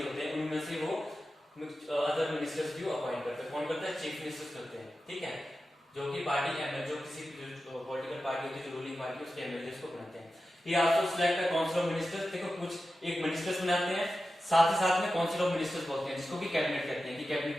होते हैं, उनमें से वो अदर मिनिस्टर्स भी अपॉइंट करते हैं। कौन करता है? चीफ मिनिस्टर्स करते हैं। ठीक है, जो कि पार्टी एमएलए, जो किसी पॉलिटिकल पार्टी होती है, जो रूलिंग पार्टी, उसके एमएलए को बनाते हैं। ही also select a council of ministers. देखो, कुछ एक मिनिस्टर्स बनाते हैं, साथ ही साथ में काउंसिल ऑफ मिनिस्टर्स बोलते हैं, जिसको भी कैबिनेट कहते हैं, कि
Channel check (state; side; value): normal; both; correlation 0.92